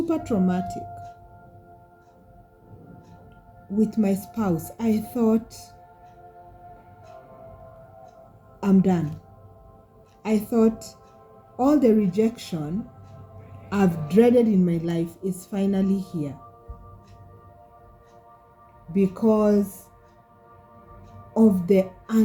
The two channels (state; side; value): identical; both; correlation 1.00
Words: traumatic, with my spouse, I thought, I'm done. I thought all the rejection I've dreaded in my life is finally here, because of the